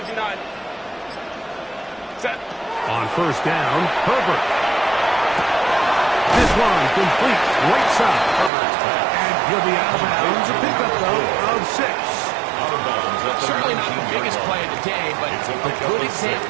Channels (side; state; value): left; drops out; at 8.5 s